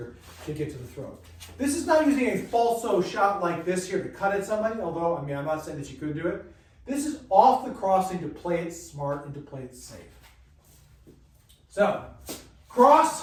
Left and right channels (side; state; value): both; identical; correlation 1.00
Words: to get to the throat. This is not using a falso shot like this here to cut at somebody, although, I mean, I'm not saying that you could do it. This is off the crossing to play it smart and to play it safe. So,